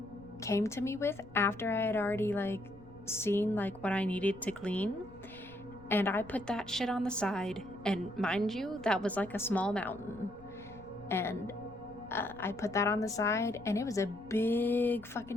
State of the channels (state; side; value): noise; left; rumble, 21 dB below the sound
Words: to me with after I had already like seen like what I needed to clean, and I put that shit on the side. And mind you, that was like a small mountain, and I put that on the side, and it was a big